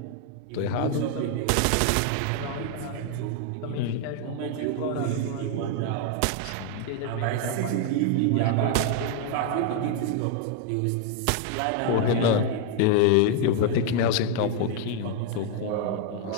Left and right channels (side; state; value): both; different; correlation 0.00